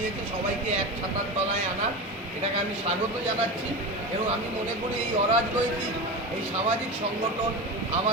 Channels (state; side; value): normal; both; correlation 0.24